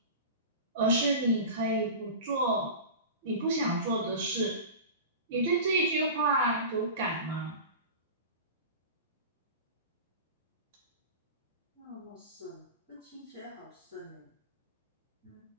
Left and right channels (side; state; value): both; inverted; correlation -0.32